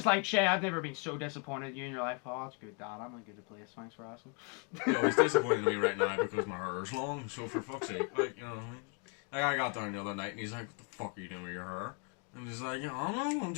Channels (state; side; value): quieter; right; 33.7 dB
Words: like, Shay, I've never been so disappointed in you in your life. Oh, that's good, Dad. I'm a good place. Thanks for asking. Yo, he's disappointed in me right now because my hair's long, so for fuck's sake, like, you know what I mean? Like, I got down the other night and he's like, what the fuck are you doing with your hair? And he's like, I don't